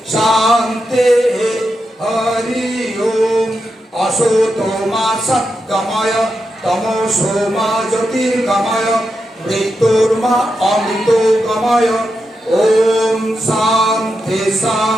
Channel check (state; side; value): normal; both; correlation 0.87